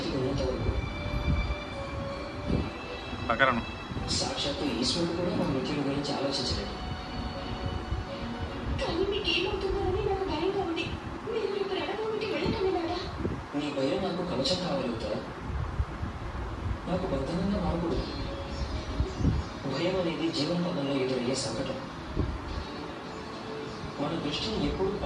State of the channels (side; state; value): both; identical; correlation 1.00